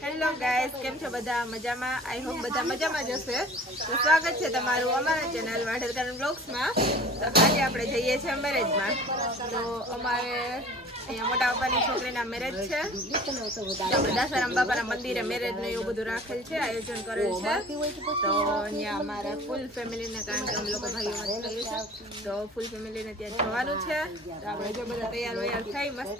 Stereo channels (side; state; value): both; normal; correlation 0.44